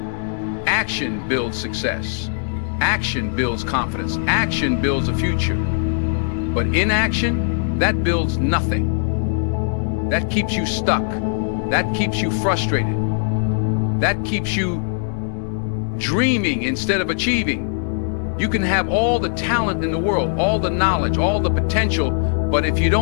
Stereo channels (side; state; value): right; silent; digital silence